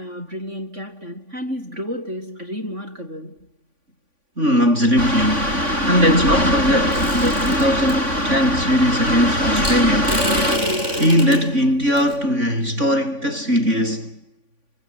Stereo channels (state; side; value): late; left; 3.5 ms